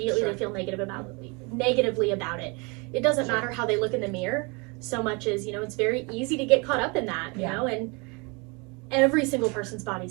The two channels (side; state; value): left; quieter; 29.9 dB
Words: Sure. they feel negatively about it. It doesn't Sure. matter how they look in the mirror so much as, you know, it's very easy to get caught up in that, you Yeah. know, and every single person's